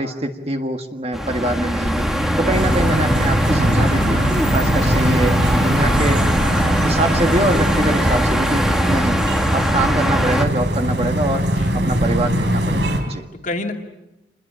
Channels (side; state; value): both; normal; correlation 0.75